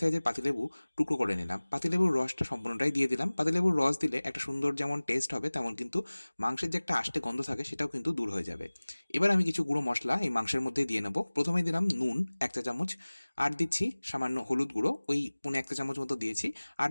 সাইজের পাতিলেবু টুকরো করে নিলাম, পাতিলেবুর রসটা সম্পূর্ণটাই দিয়ে দিলাম। পাতিলেবুর রস দিলে একটা সুন্দর যেমন টেস্ট হবে, তেমন কিন্তু মাংসের যে একটা আষ্টে গন্ধ থাকে সেটাও কিন্তু দূর হয়ে যাবে। এবার আমি কিছু গুঁড়ো মশলা এই মাংসের মধ্যেই দিয়ে নেবো। প্রথমেই দিলাম নুন 1 চা চামচ, আর দিচ্ছি সামান্য হলুদ গুঁড়ো, ওই 1.25 চা চামচ মতো দিয়েছি। আর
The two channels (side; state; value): both; inverted; correlation -1.00